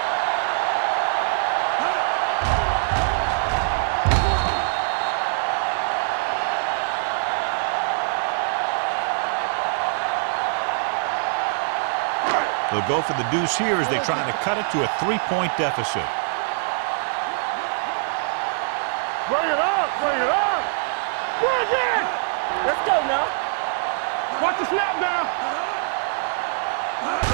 They'll go for the deuce here as they try to cut it to a 3-point deficit. Whip. Bring it up. Bring it. Let's go now. Watch the snap down.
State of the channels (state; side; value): silent; left; digital silence